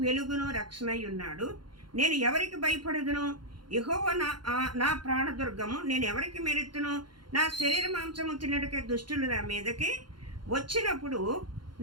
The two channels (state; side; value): late; left; 0.71 ms